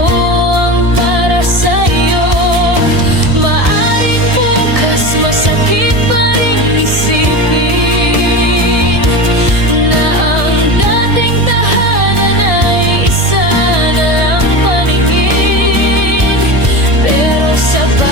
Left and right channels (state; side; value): late; left; 1.7 ms